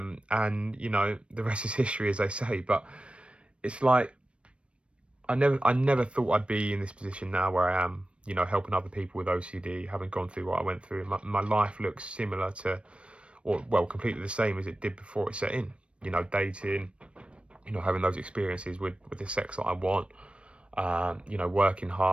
the rest is history, as they say. But it's like I never thought I'd be in this position now where I am. Helping other people with OCD, having gone through what I went through. My life looks similar to, or well, completely the same as it did before it set in. Dating, having those experiences with the sex that I want, working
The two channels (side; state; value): left; late; 0.060 ms